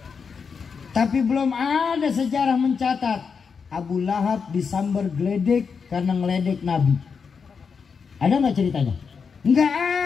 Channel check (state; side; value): quieter; right; 5.8 dB